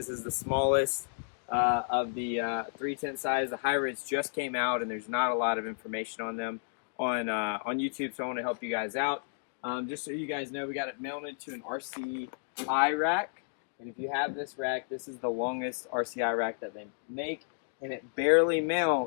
is the smallest of the 3 tent size. The hybrids just came out, and there's not a lot of information on them on YouTube. So I want to help you guys out. Just so you guys know, we got it mounted to an RCI rack, and if you have this rack, this is the longest RCI rack that they make, and it barely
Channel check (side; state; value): right; silent; digital silence